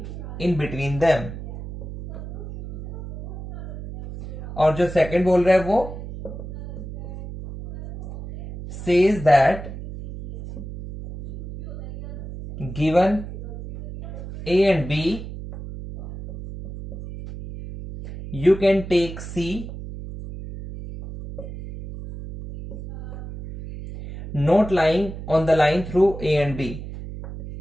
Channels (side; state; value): right; noise; hum, 10 dB below the sound